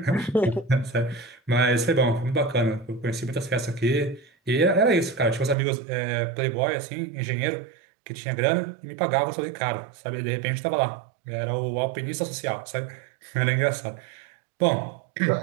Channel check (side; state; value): left; drops out; at 5.6 s